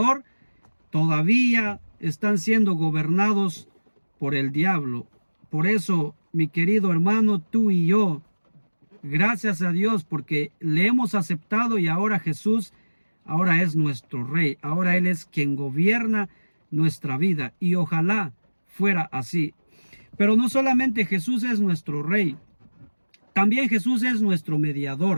todavía están siendo gobernados por el diablo. Por eso, mi querido hermano, tú y yo Gracias a Dios porque le hemos aceptado y ahora Jesús, ahora es nuestro Rey. Ahora Él es quien gobierna nuestra vida y ojalá fuera así. Pero no solamente Jesús es nuestro Rey, también Jesús es nuestro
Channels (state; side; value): inverted; both; correlation -1.00